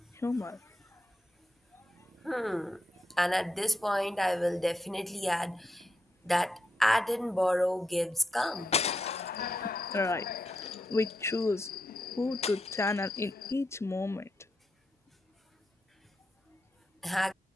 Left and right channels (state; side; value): normal; both; correlation 0.84